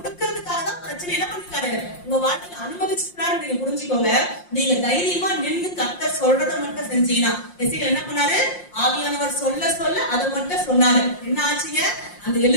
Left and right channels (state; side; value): late; right; 5.6 ms